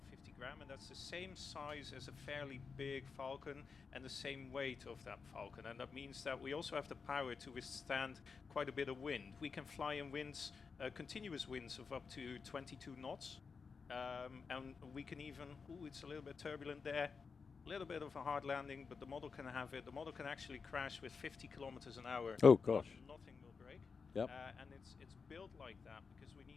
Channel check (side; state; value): right; quieter; 5.2 dB